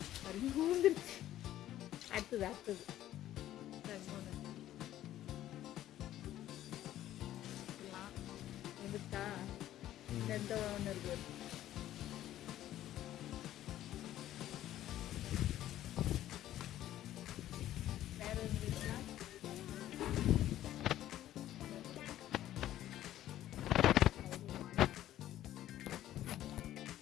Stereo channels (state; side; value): quieter; right; 13.0 dB